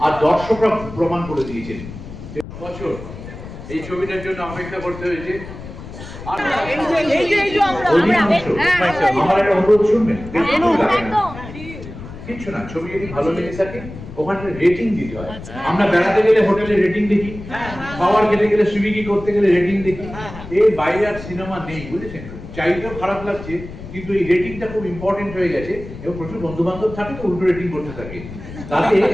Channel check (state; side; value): noise; left; rumble, 13 dB below the sound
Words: আর দর্শকরা প্রমাণ করে দিয়েছেন। বছর এই ছবিটার জন্য অপেক্ষা করতে হয়েছে। আমার একটা অনুরোধ শুনবেন, কিচ্ছু না, ছবি যদি ভালো লেগে থাকে ওখানে রেটিং দিতে হয়। আমরা বেড়াতে গেলে হোটেলে রেটিং দেখি, খাবার খেতে গেলে সুইগি করতে গেলে রেটিং দেখি। এর বাইরে আর সিনেমা নেই, বুঝেছেন? চাইতেও খারাপ লাগছে, কিন্তু এই রেটিংটা খুব ইম্পর্টেন্ট হয়ে গেছে। এবং প্রচুর বন্ধু বান্ধব থাকে তো উল্টো রেটিং করতে থাকে, তাতে